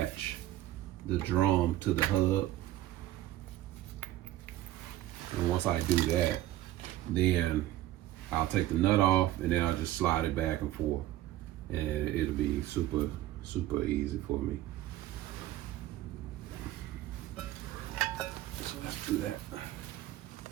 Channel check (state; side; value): quieter; left; 14.6 dB